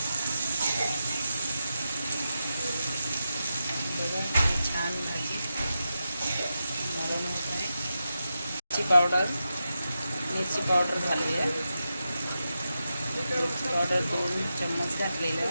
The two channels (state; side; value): inverted; both; correlation -0.89